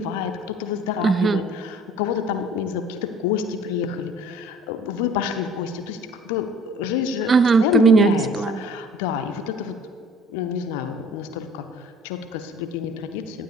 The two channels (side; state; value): both; normal; correlation 0.52